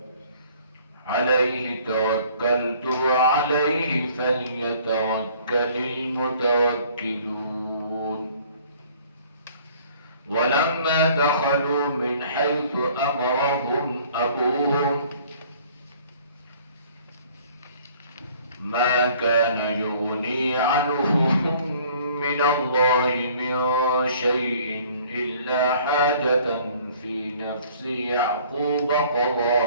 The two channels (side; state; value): both; inverted; correlation -0.55